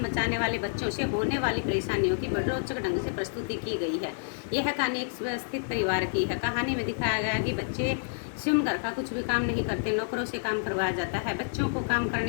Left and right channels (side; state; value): right; silent; 59 dB below the other